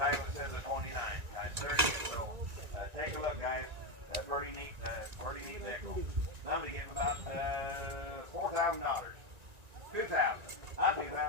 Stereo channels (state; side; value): late; left; 1.9 ms